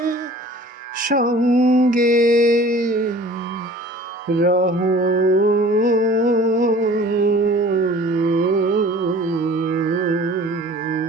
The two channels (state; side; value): normal; both; correlation 0.47